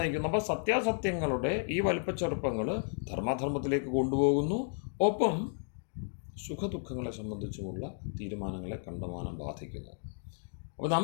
അപ്പോൾ സത്യാസത്യങ്ങളുടെ ഈ വലിപ്പച്ചെറുപ്പങ്ങൾ ധർമാധർമ്മത്തിലേക്ക് കൊണ്ടുപോകുന്നു. ഒപ്പം സുഖദുഃഖങ്ങളെ സംബന്ധിച്ചുമുള്ള തീരുമാനങ്ങളെ കണ്ടമാനം ബാധിക്കുന്നു. അപ്പോൾ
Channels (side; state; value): right; silent; 56 dB below the other